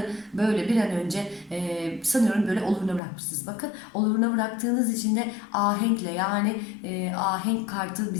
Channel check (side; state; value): right; drops out; at 3.0 s